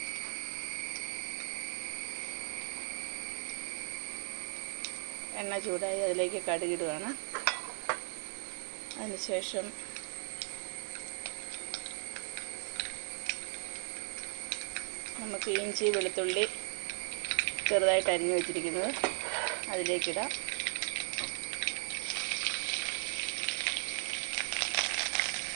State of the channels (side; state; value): left; silent; 53 dB below the other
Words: എണ്ണ ചൂടായി അതിലേക്ക് കടുകിടുകയാണ്. അതിനുശേഷം നമുക്ക് ഇഞ്ചി, വെളുത്തുള്ളി ചെറുതായിട്ട് അരിഞ്ഞു വെച്ചിരിക്കുന്നത് അതിലേക്കിടാം.